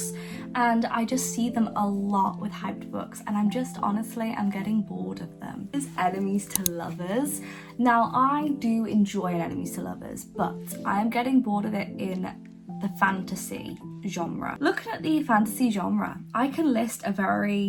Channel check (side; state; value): both; identical; correlation 1.00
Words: and I just see them a lot with hyped books, and I'm getting bored of them. Is enemies to lovers. Now I do enjoy an enemies to lovers, but I am getting bored of it in the fantasy genre. Looking at the fantasy genre, I can list a